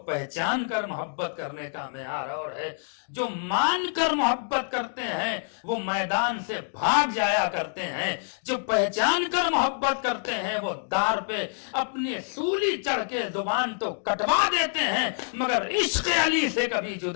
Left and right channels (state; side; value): silent; right; digital silence